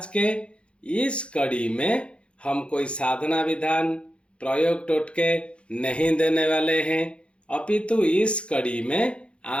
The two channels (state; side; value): late; right; 0.058 ms